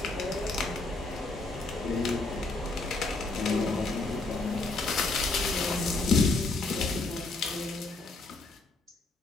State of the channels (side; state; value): right; quieter; 3.3 dB